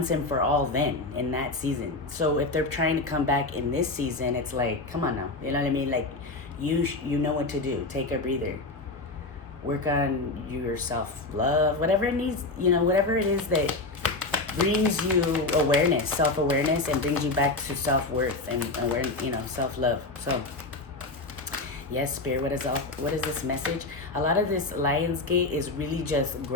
and for all then, in that season. So if they're trying to come back in this season, it's like, come on now. You know what I mean? Like, you know what to do. Take a breather. Work on your self-love, whatever it needs, you know, whatever it is that brings you awareness, self-awareness, and brings you back to self-worth and awareness, you know, self-love. So, Yes, Spirit, what is this message? A lot of this Lionsgate is really just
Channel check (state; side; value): quieter; right; 3.2 dB